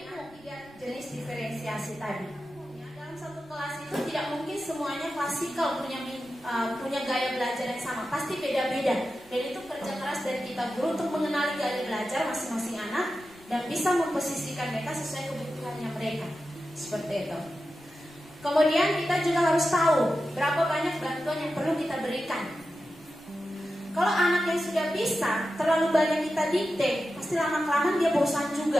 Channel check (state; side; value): noise; right; rumble, 27 dB below the sound